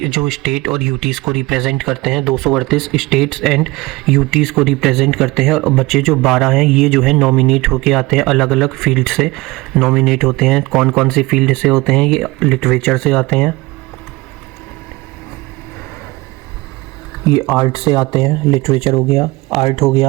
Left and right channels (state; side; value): quieter; left; 21.7 dB